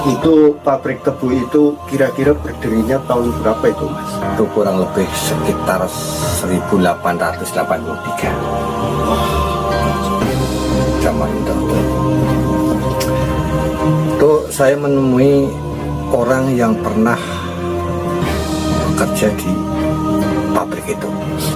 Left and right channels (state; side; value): identical; both; correlation 1.00